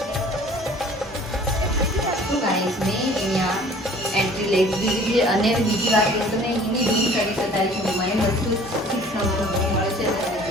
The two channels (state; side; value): normal; both; correlation 0.50